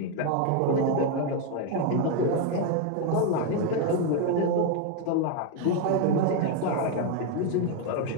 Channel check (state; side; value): different; both; correlation 0.01